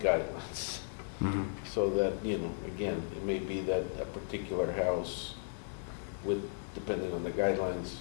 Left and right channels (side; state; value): right; silent; 54 dB below the other